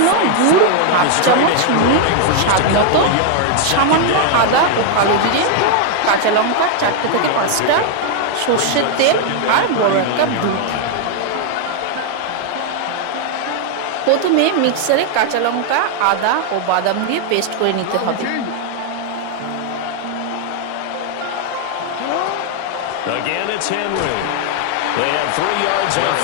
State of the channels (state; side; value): different; both; correlation 0.00